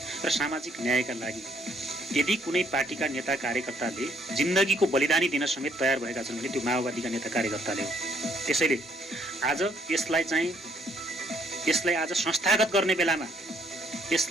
र सामाजिक न्यायका लागि यदि कुनै पार्टीका नेता कार्यकर्ताले जिन्दगीको बलिदानी दिन समेत तयार भएका छन् भने त्यो माओवादीका नेता कार्यकर्ताले हो। त्यसैले आज यसलाई आज संस्थागत गर्ने बेलामा,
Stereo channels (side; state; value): both; normal; correlation 0.67